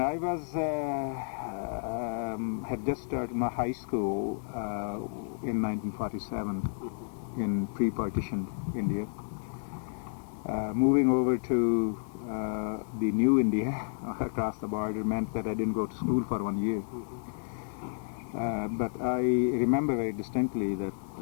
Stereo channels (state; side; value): silent; right; digital silence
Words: I was had just started my high school in 1947 in pre-partition India. Moving over to the new India across the border meant that I didn't go to school for 1 year. But I remember very distinctly that